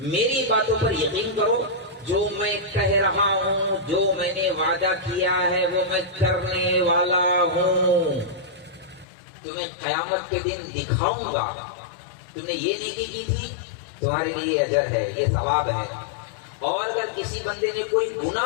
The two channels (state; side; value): drops out; right; at 9.1 s